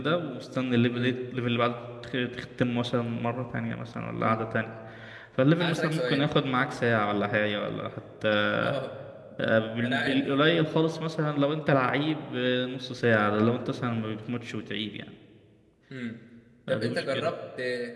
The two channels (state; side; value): identical; both; correlation 1.00